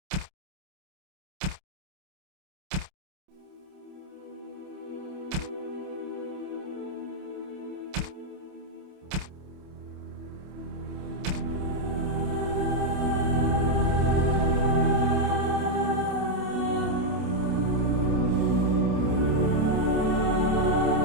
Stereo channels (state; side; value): late; left; 28 ms